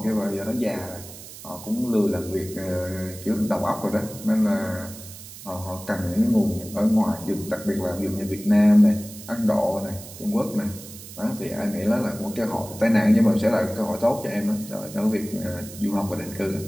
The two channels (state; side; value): noise; right; hiss, 15 dB below the sound